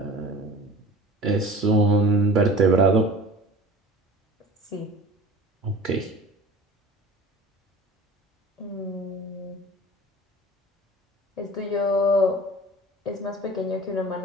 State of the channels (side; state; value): both; normal; correlation 0.41